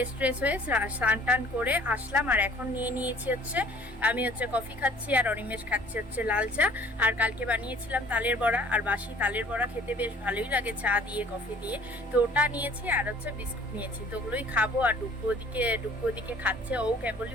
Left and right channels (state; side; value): normal; both; correlation 0.52